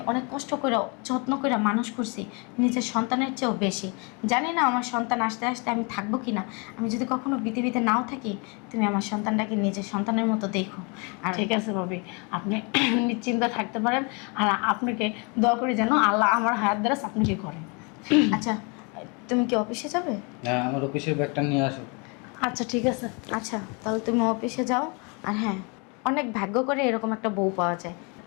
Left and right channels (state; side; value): quieter; right; 32.4 dB